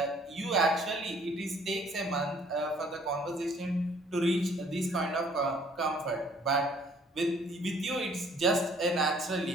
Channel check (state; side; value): normal; both; correlation 0.59